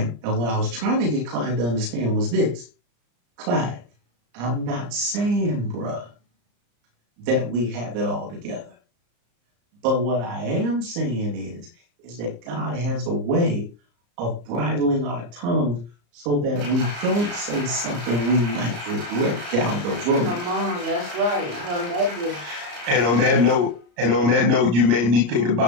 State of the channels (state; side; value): late; left; 34 ms